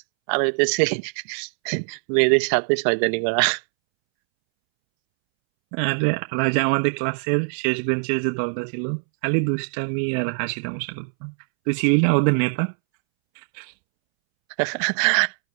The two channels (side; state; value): left; silent; 64 dB below the other